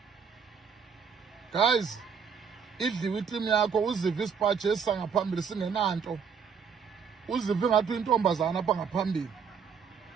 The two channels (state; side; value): quieter; left; 6.5 dB